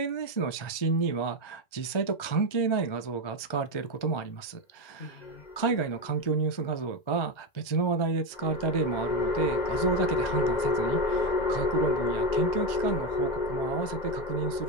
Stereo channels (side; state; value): right; late; 1.4 ms